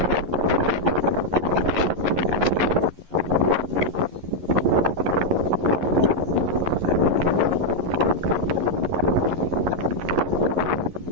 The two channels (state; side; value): late; left; 11 ms